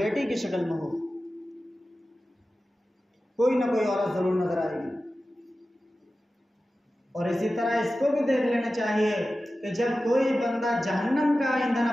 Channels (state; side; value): normal; both; correlation 0.94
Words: की शक्ल में हो, कोई ना कोई औरत ज़रूर नज़र आएगी। और इसी तरह इसको भी देख लेना चाहिए कि जब कोई बंदा जहन्नम का ईंधन